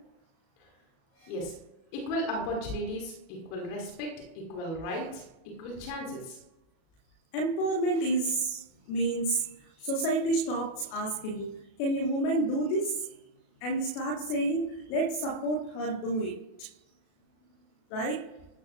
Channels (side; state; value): right; late; 36 ms